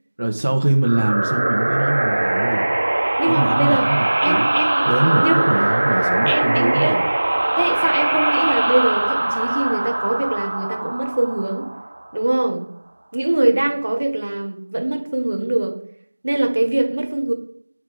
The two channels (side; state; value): both; inverted; correlation -1.00